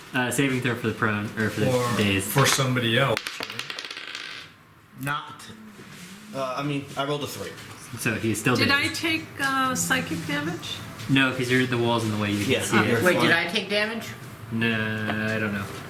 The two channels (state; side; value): identical; both; correlation 1.00